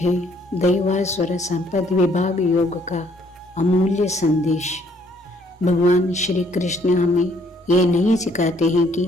दैवासुर संपद विभाग योग का अमूल्य संदेश। भगवान श्री कृष्ण हमें ये नहीं सिखाते हैं कि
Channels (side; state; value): both; normal; correlation 0.65